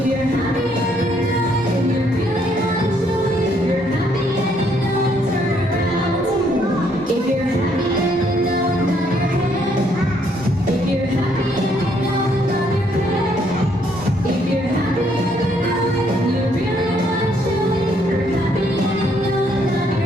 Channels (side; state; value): both; normal; correlation 0.69